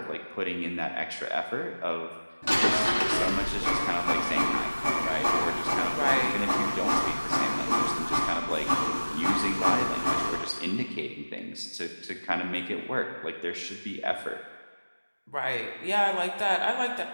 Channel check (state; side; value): inverted; both; correlation -1.00